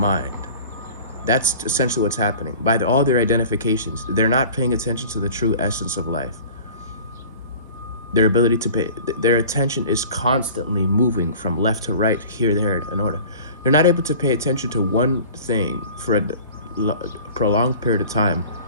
That's essentially what's happening. By all their identifications, they're not paying attention to the true essence of life. Their ability to their attention is constantly moving from left to right, here, there, in order. They're not able to pay attention to one thing for a prolonged period of time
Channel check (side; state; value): both; inverted; correlation -0.43